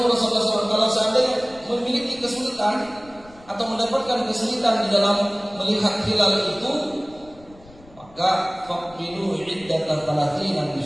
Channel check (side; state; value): left; noise; rumble, 24 dB below the sound